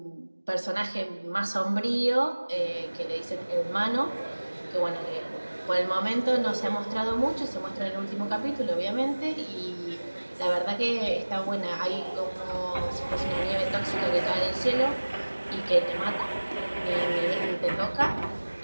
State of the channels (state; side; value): inverted; both; correlation -1.00